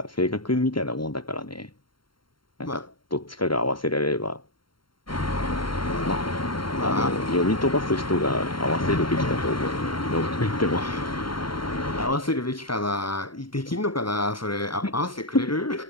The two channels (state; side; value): late; right; 0.73 ms